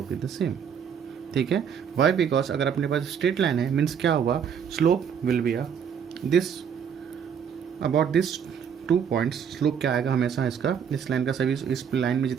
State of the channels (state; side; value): quieter; left; 7.6 dB